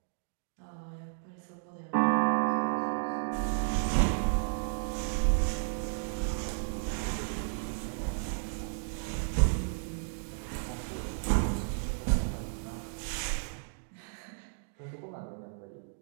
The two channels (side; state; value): left; silent; digital silence